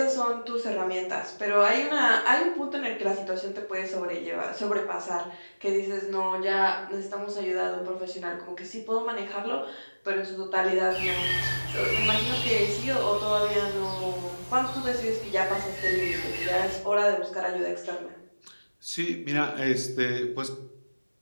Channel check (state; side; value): inverted; both; correlation -1.00